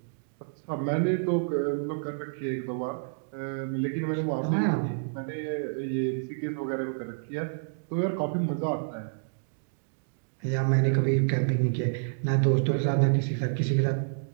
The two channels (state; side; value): silent; left; digital silence